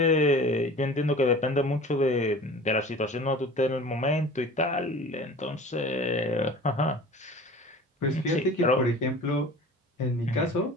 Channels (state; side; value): normal; both; correlation 0.40